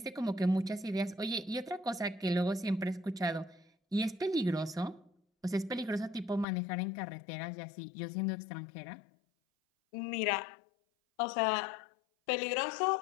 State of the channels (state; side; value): drops out; right; at 6.5 s